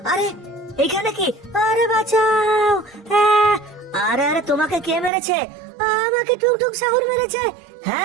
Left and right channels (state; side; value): drops out; left; at 5.1 s